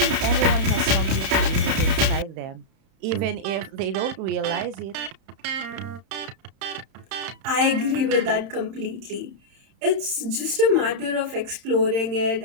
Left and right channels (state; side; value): late; left; 31 ms